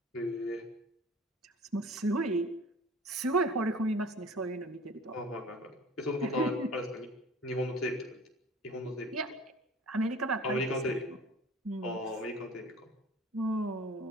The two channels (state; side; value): normal; both; correlation 0.45